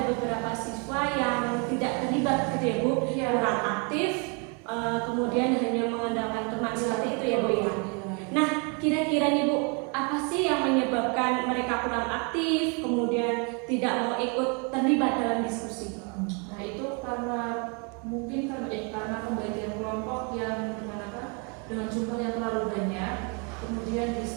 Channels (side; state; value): left; quieter; 35.0 dB